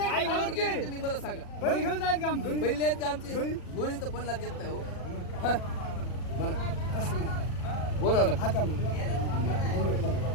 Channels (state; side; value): late; right; 40 ms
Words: तुम्ही मला सांगा. बैल घेऊन जायचं का आमचं? पहिले आहेत का आमची गोळी तर पणला देत नाही हो. मला बोलावं ना. आता